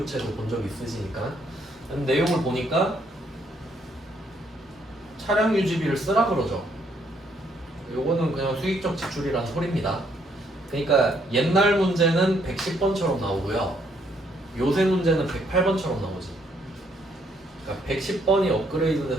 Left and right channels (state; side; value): normal; both; correlation 0.70